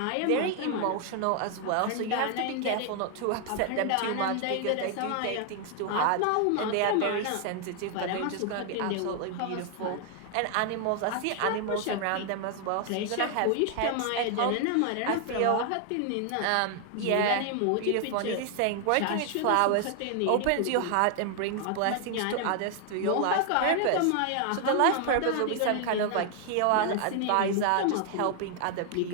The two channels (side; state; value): both; different; correlation 0.00